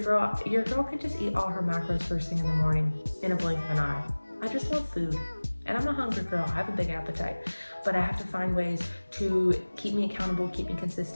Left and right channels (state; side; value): inverted; both; correlation -1.00